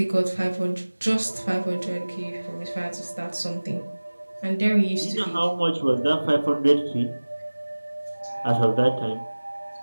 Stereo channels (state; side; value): inverted; both; correlation -1.00